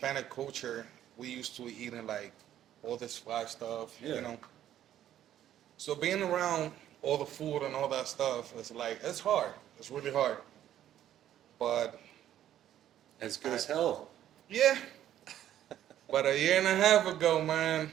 culture, we used to eating like all this fried stuff, Yeah. So being around all the food and all that stuff, it's hard. It's really hard. But As good as hell. yeah. But a year and a half ago, man,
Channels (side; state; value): left; quieter; 11.5 dB